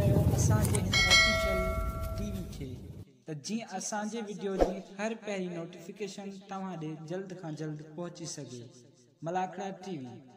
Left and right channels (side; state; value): both; identical; correlation 1.00